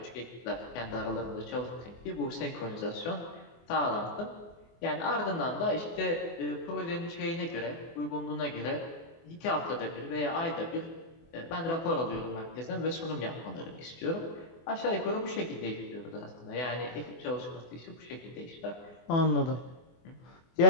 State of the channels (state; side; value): late; right; 24 ms